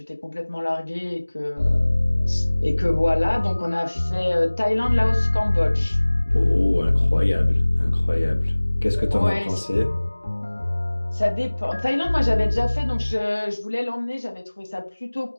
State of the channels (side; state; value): both; inverted; correlation -1.00